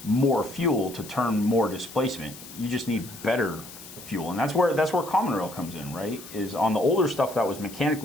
more fuel to turn more displacement. You just need better fuel, and that's where common rail comes in, right? Is on the older stuff that was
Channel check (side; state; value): left; noise; hiss, 16 dB below the sound